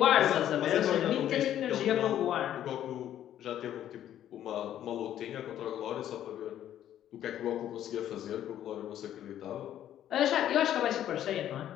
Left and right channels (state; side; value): quieter; right; 11.3 dB